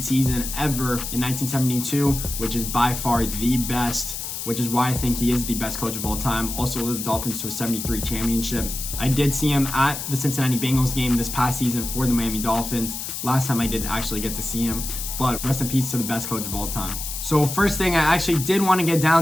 season ever in 1972, which is by far the best, which is why I think he is the best coach of all time. Also led the Dolphins to a 73 championship. I did see him at the Cincinnati Bengals game this past season for the Miami Dolphins. Last time I did actually get to see him, but rest in peace to the best coach of all time. So first thing I actually did want to get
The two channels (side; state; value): left; noise; hiss, 6 dB below the sound